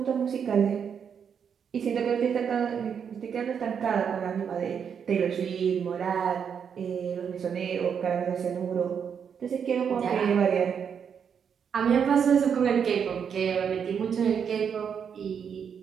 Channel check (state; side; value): quieter; left; 7.3 dB